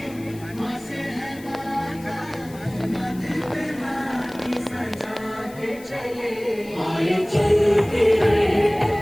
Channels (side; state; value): left; noise; hiss, 22 dB below the sound